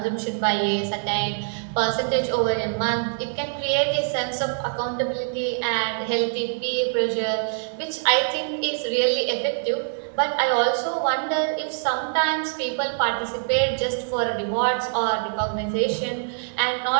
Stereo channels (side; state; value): left; silent; digital silence